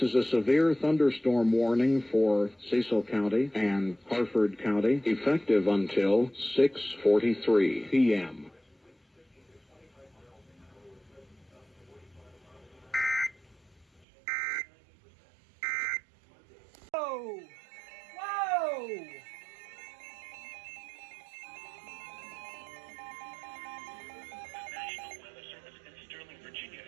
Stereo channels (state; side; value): drops out; left; at 14.0 s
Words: is a severe thunderstorm warning for Cecil County and Harford County, effective until 6:43 p.m. Whoa! Whoa! National Weather Service in Sterling, Virginia